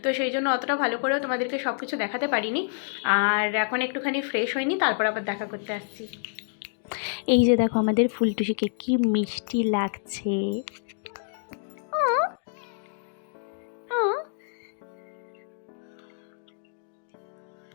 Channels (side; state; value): right; silent; digital silence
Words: তো সেই জন্য অতটা ভালো করেও তোমাদেরকে সব কিছু দেখাতে পারিনি। আর এখন একটুখানি ফ্রেশ হয়নি, তারপর আবার দেখা করতে আসছি। এই যে দেখো আমাদের ফুলটুসিকে কি মিষ্টি লাগছে।